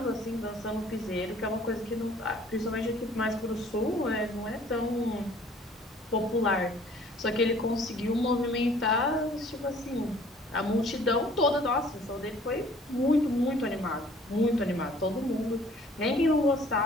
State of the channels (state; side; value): normal; both; correlation 0.55